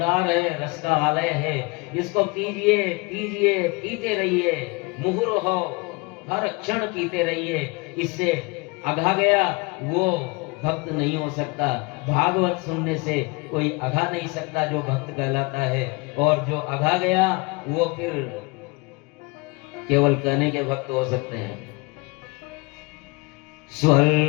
है, रस का आलय है। इसको पीजिए पीजिए, पीते रहिए, मुहुर्हो, हर क्षण पीते रहिए। इससे अघा गया वो भक्त नहीं हो सकता। भागवत सुनने से कोई अघा नहीं सकता जो भक्त कहलाता है, और जो अघा गया वो फिर केवल कहने के भक्त हो सकते हैं।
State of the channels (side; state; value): right; quieter; 27.2 dB